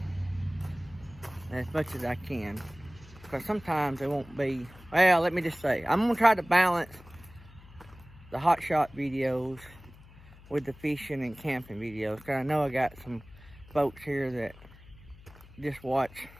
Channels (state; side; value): noise; left; hum, 21 dB below the sound